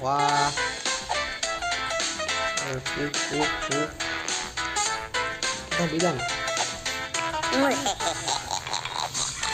ကွာတမ်းပေးလိုက်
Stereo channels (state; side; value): identical; both; correlation 1.00